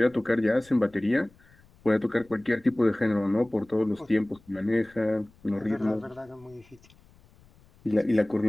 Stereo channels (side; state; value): left; noise; rumble, 28 dB below the sound